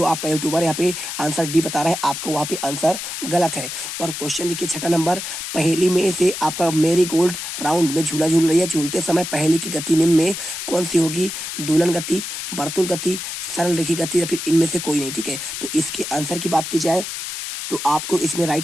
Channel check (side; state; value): left; noise; hiss, 6 dB below the sound